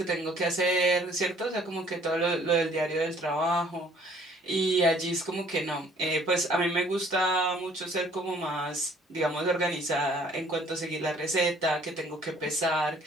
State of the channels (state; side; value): normal; both; correlation 0.58